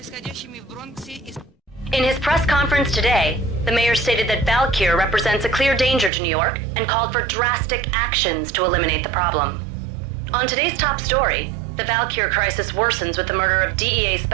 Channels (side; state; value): left; drops out; at 6.1 s